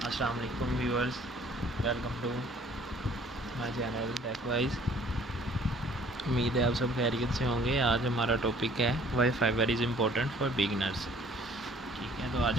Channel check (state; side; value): normal; both; correlation 0.56